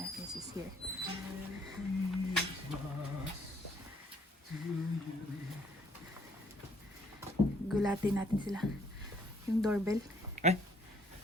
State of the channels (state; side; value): normal; both; correlation 0.64